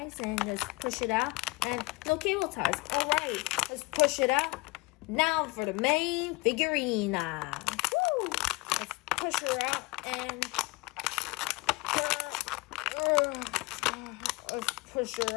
and let's push it out. And no cable ties. Alright, let's push it out. Now for the main figurine. Woo! Let's push her out. And let's push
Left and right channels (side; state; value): right; quieter; 24.9 dB